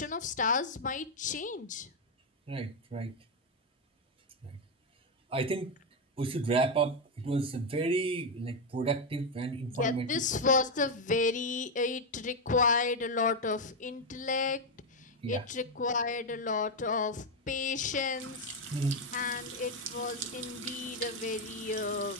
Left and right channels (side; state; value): both; normal; correlation 0.04